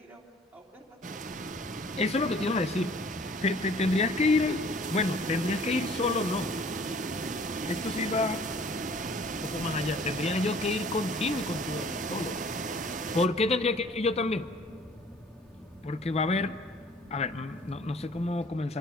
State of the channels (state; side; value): normal; both; correlation 0.53